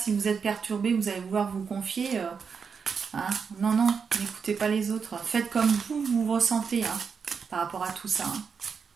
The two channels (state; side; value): quieter; left; 6.0 dB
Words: vous êtes perturbé, vous allez vouloir vous confier. Hein. Non, non, n'écoutez pas les autres. Faites comme vous ressentez, hein, par rapport à tout ça. Hein.